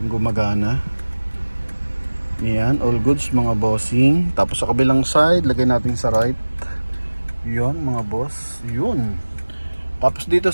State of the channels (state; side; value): inverted; both; correlation -1.00